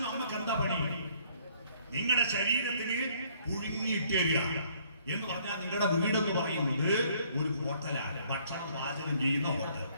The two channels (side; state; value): both; inverted; correlation -0.62